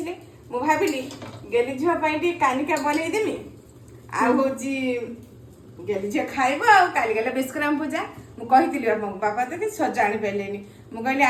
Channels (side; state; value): both; identical; correlation 1.00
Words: ମୁଁ ଭାବିଲି ଗେଲି ଝିଅ ପାଇଁ ଟିକେ କାନିକା ବନେଇଦେମି। ଆଉ ହଉଛି ଗେଲି ଝିଅ ଖାଇବ। ଆଉ କାଲି ଗଲେ ବିଷ୍କରାମ ପୂଜା, ମୁଁ କହିଥିଲି ବାପାଙ୍କୁ, ବାପା ତ କିଛି ସଜ ଆଣିପାରିଲେନି। ମୁଁ କହିଲି